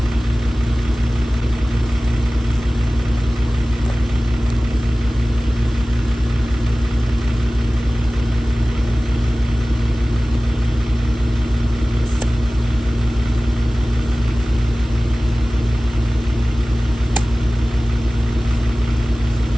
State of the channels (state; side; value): normal; both; correlation 0.97